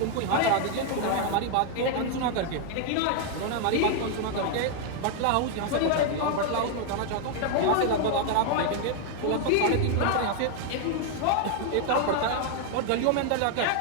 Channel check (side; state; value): both; different; correlation 0.00